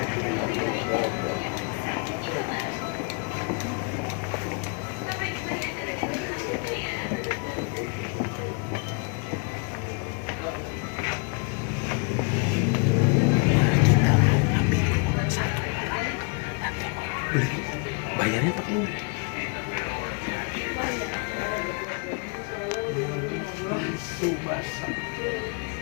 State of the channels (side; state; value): right; quieter; 34.7 dB